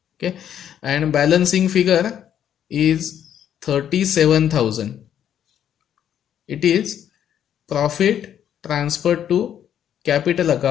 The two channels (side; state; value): right; quieter; 9.8 dB